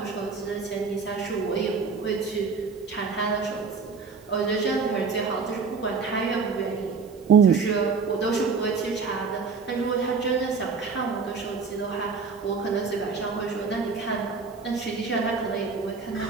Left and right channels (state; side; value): quieter; left; 5.0 dB